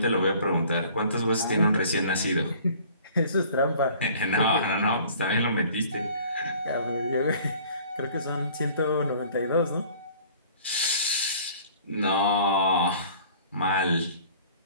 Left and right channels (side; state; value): both; inverted; correlation -0.51